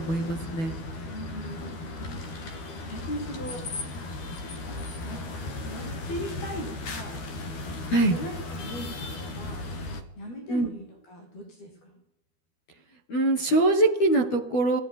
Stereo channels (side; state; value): right; late; 12 ms